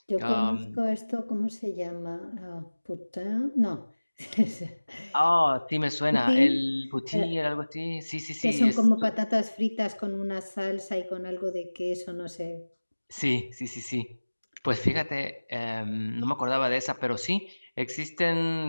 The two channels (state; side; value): inverted; both; correlation -1.00